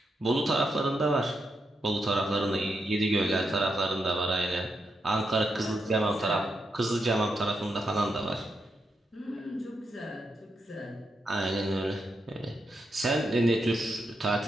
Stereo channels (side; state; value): both; normal; correlation 0.83